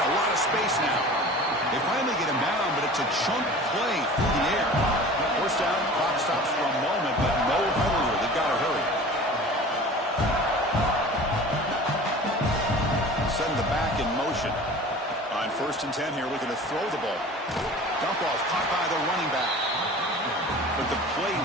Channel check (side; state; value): both; normal; correlation 0.40